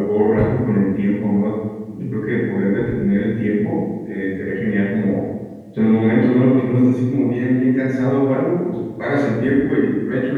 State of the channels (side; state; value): both; identical; correlation 1.00